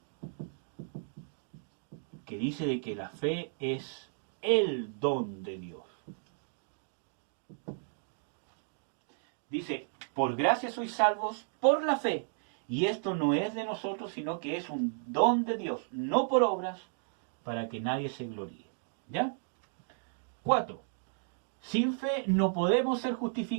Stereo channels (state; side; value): silent; left; digital silence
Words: Que dice de que la fe es el don de Dios. Dice, por gracia sois salvos por la fe. Y esto no es de nosotros, sino que es un don de Dios, no por obras, para que nadie se gloríe. ¿Ya? 4. Sin fe no podemos ser